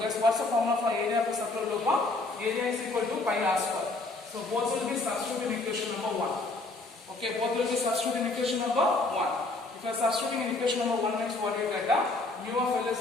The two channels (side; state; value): right; quieter; 3.2 dB